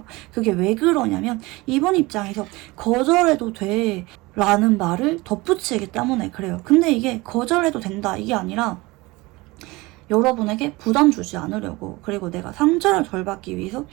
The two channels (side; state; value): left; quieter; 22.2 dB